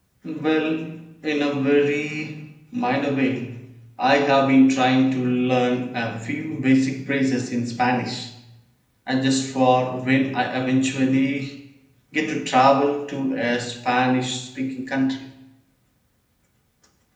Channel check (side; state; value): both; identical; correlation 1.00